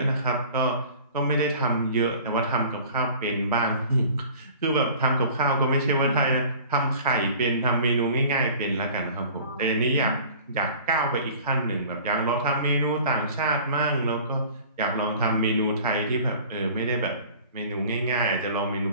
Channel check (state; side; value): inverted; both; correlation -0.45